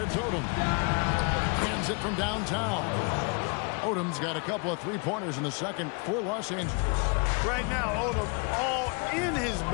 Odom. Hands it from downtown. Odom's got a couple of three-pointers in the second for Los Angeles. Right now, Odom all in his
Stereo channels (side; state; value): right; quieter; 34.4 dB